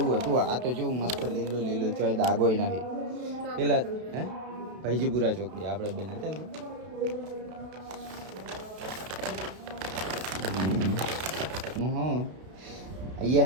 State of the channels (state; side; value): late; left; 32 ms